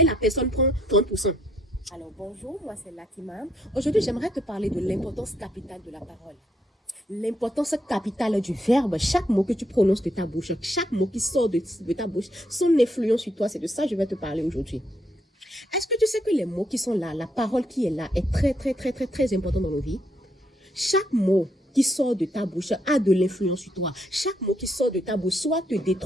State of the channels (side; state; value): both; normal; correlation 0.74